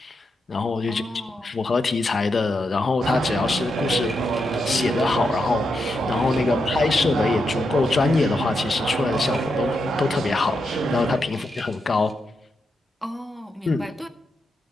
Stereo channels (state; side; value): normal; both; correlation 0.84